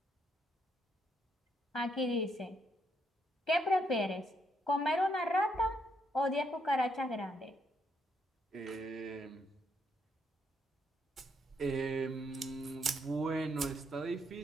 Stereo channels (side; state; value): both; normal; correlation 0.75